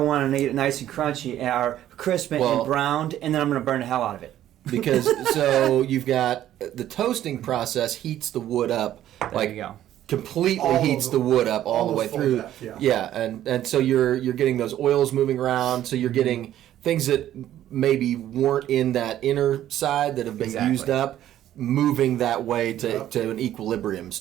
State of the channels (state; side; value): quieter; left; 12.3 dB